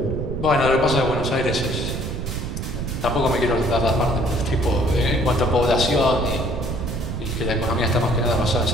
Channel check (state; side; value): noise; right; rumble, 4 dB below the sound